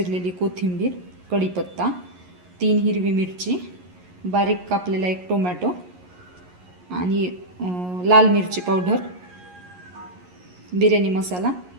कोथिंबीर, कढीपत्ता, 3 हिरवी मिरची, बारीक कापलेला 1 टोमॅटो आणि लाल मिरची पावडर, बिर्याणी मसाला,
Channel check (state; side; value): late; left; 11 ms